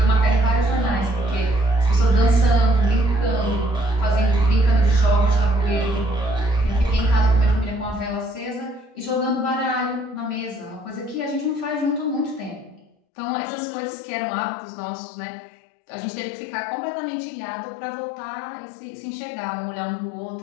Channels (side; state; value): right; drops out; at 12.9 s